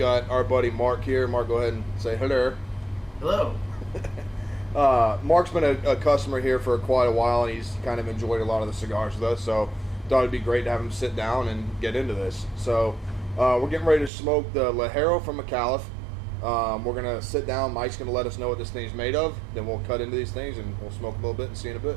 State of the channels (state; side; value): drops out; left; at 14.1 s